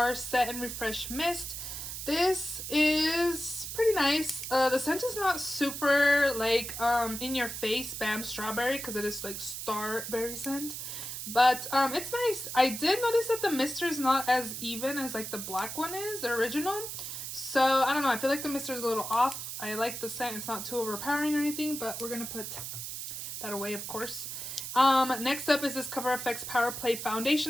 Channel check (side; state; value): right; noise; hiss, 7 dB below the sound